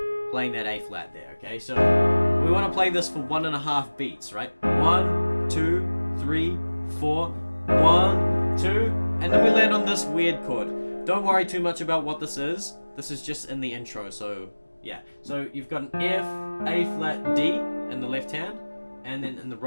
playing that A flat there, okay? So we want to play this for 1.5 beats, right? 1, 2, 3, 4. 1, 2. And then we land on this weird chord. Don't worry too much about what this is. This is just in the intro, so... yeah, so you've got an F, A flat, D in the left hand, and then in the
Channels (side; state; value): both; inverted; correlation -1.00